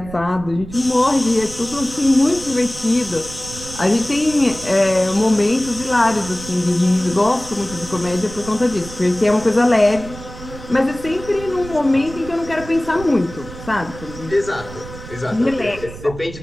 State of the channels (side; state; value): right; noise; rumble, 14 dB below the sound